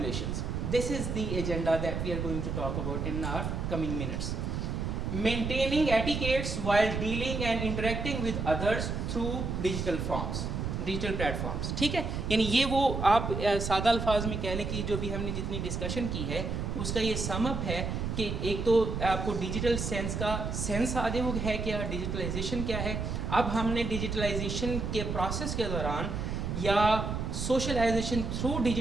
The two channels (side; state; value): right; noise; rumble, 2 dB below the sound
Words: This is the agenda that we are going to talk about in our coming minutes. Maintaining etiquettes while dealing and interacting with others through digital forms, digital platforms. ٹھیک ہے. یعنی یہ وہ آپ سادہ الفاظ میں کہہ لیں کہ جو بھی ہم نے جتنی ڈسکشن کی ہے اس کا یہ سم اپ ہے کہ ایک تو آپ کو ڈیجیٹل سینس کا سینس آدھے وہ ہے کیا, ڈیجیٹلائزیشن کیا ہے. اب ہم نے ڈیجیٹلائزیشن کے پروسیس کے دوران یا سوشلائزیشن تھرو